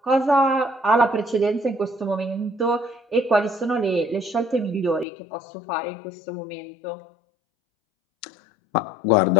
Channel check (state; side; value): drops out; right; at 5.1 s